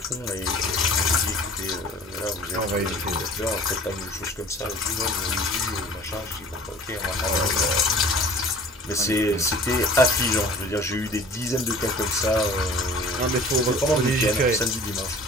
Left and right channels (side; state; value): both; normal; correlation 0.46